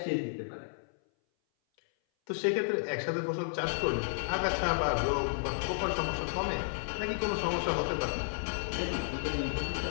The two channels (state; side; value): silent; right; 56 dB below the other